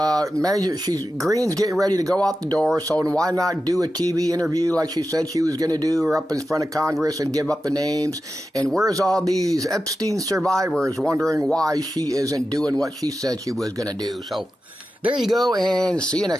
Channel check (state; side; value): normal; both; correlation 0.92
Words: Greene's getting ready to go out the door, so why not do a TV interview like she said she was going to do, or up in front of Congress and give up the names? And where's all these Epstein survivors wondering why she isn't doing what she said she was going to do? So there you go, and see you